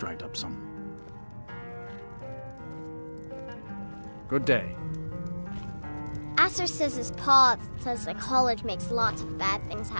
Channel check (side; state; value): both; inverted; correlation -1.00